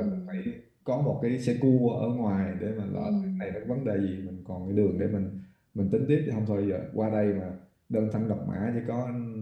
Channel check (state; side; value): identical; both; correlation 1.00